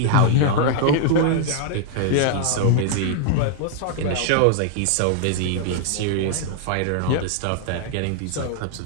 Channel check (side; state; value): both; different; correlation -0.01